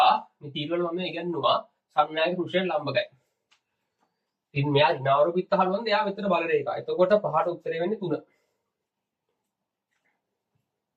මේ තීරවල මම ඉගෙනුවා සන්නායක පෘෂ්ඨයට ලම්බකයි. ඉතින් මෙයා ඍණාරෝපිත තහඩුවන්ද එයා විතර බල රේඛා. එතකොට පහට උත්තරේ වෙන්නේ 3.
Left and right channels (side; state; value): both; identical; correlation 1.00